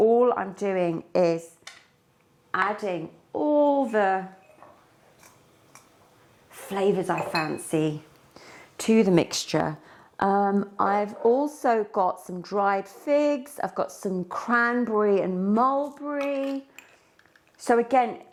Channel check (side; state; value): both; identical; correlation 1.00